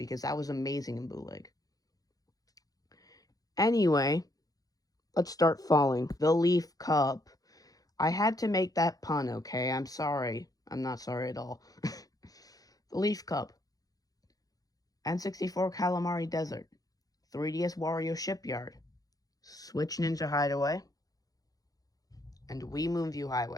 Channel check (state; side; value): late; right; 0.18 ms